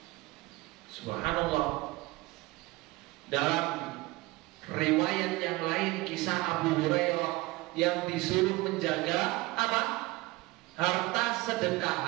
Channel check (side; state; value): left; quieter; 21.1 dB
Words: Subhanallah. Dalam riwayat yang lain, kisah Abu Hurairah yang disuruh menjaga apa? Harta sedekah,